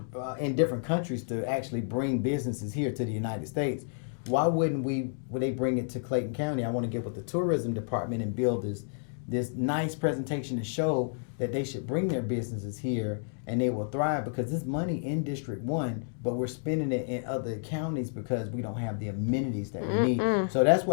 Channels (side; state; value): right; silent; digital silence